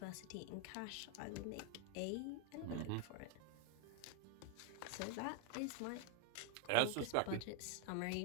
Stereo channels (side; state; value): both; different; correlation 0.00